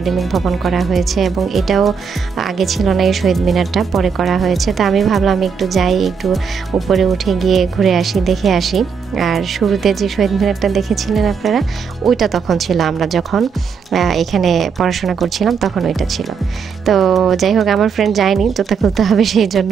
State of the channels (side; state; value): left; quieter; 6.1 dB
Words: ভবন করা হয়েছে, এবং এটাও আগে ছিল না, এই শহীদ মিনারটা পরে করা হয়েছে। তো আমি ভাবলাম একটু যাই, একটু উপরে উঠে গিয়ে ঘুরে আসি, দেখে আসি। আর শুরুতে যে শহীদ মিনারটা দেখেছিলেন আপনারা, ওইটা তখন ছিল, আমরা যখন এখানে পড়াশোনা করছিলাম তখন ওইটা ছিল। তো যাই হোক আমার ফ্রেন্ড যায়নি, জুতা খুলতে হবে সেই